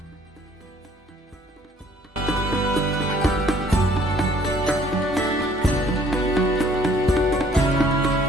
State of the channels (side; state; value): both; normal; correlation 0.59